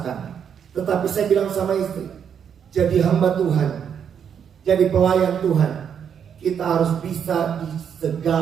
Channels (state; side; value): quieter; left; 7.9 dB